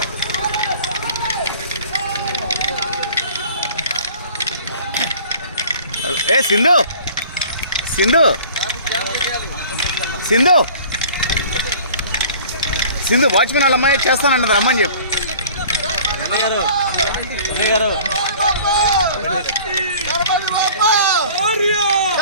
ఏ సింధు సింధు సింధు సింధు వాచ్మెన్ వాళ్ళ అమ్మాయి చేస్తానన్నది రమ్మని చెప్పు.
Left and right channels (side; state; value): both; inverted; correlation -0.47